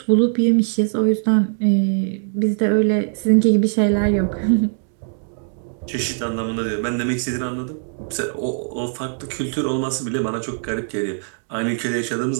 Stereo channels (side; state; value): left; silent; digital silence